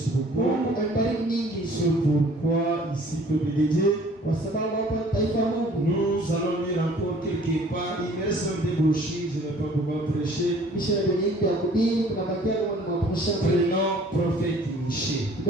beaucoup. Mungu aibariki nyingi. C'est pourquoi ici, peuple de Dieu, Kwa sababu hapa taifa la Mungu. nous allons lire encore quelque part. Il me reste un peu des brochures, je ne vais pas pouvoir prêcher. Misha yenye ya kuhubiri kuna bakia kwa maprosha. Prénom prophète Miché.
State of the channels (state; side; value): normal; both; correlation 0.53